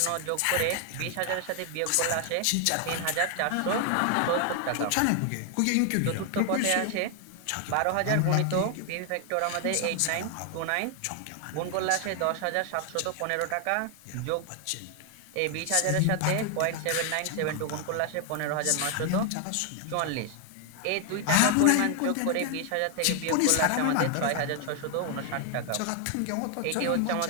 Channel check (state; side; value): different; both; correlation 0.00